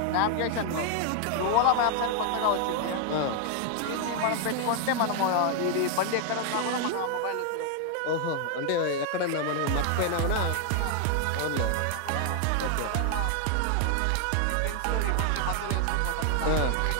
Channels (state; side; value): different; both; correlation 0.00